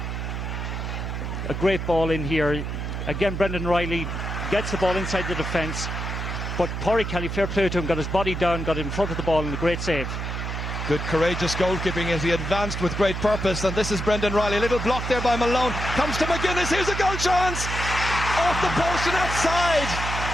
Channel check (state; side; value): noise; right; hum, 4 dB below the sound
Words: A great ball in here. Again, Brendan Riley gets the ball inside the defence, but Pádraig Kelly, fair play to him, got his body down, got in front of the ball, and a great save. Good courageous goalkeeping as he advanced with great purpose. And this is Brendan Riley. A little block there by Malone. Comes to McGuinness. Here's a goal chance. Off the post and outside.